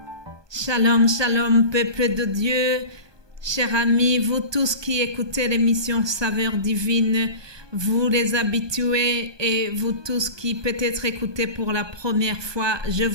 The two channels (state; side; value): late; left; 1.2 ms